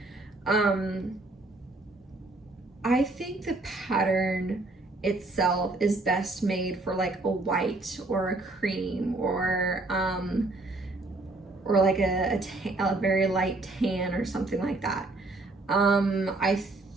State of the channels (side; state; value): left; quieter; 3.0 dB